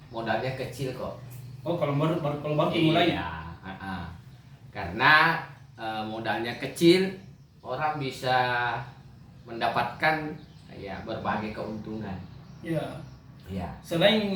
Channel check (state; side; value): identical; both; correlation 1.00